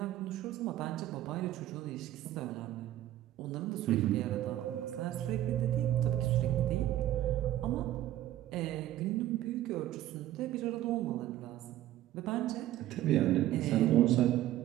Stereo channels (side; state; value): left; quieter; 13.6 dB